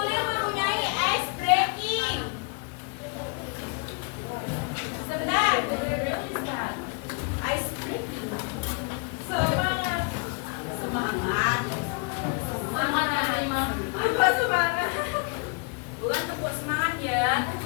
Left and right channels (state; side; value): quieter; right; 35.1 dB